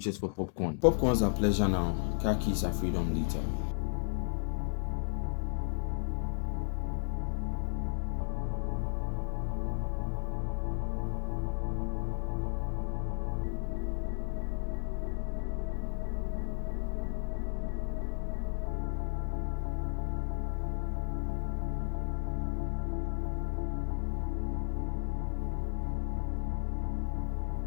for popcorn. Popcorns are pleasure now, car keys are freedom later. A monkey once stole car keys from a tourist and gave them all up for just popcorn. Imagine this monkey had the mind of a human being. He would have sold the car keys for a lot of popcorn. Most people do this all the time. Comfort over discipline. You always get 86,400 seconds in a day. And what you allocate each second for decides your future. So next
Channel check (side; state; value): right; silent; 55 dB below the other